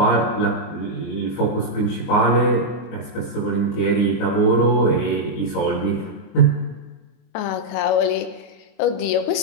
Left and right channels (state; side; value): late; right; 23 ms